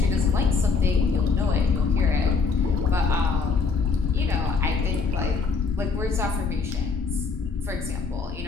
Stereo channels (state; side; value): quieter; right; 4.8 dB